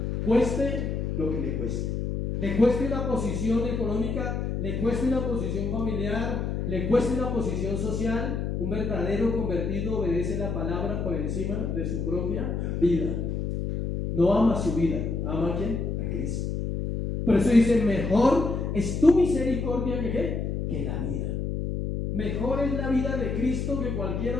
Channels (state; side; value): noise; left; hum, 2 dB below the sound